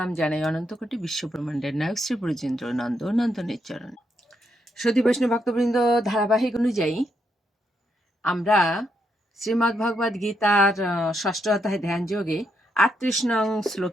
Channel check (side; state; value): both; normal; correlation 0.79